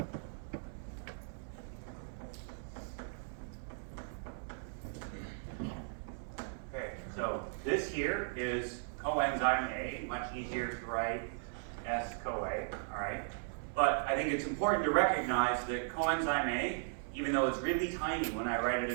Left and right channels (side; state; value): left; silent; 53 dB below the other